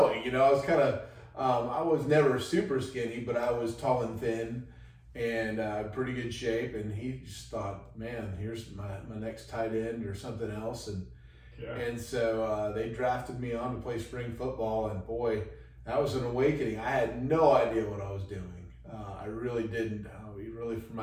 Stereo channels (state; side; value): identical; both; correlation 1.00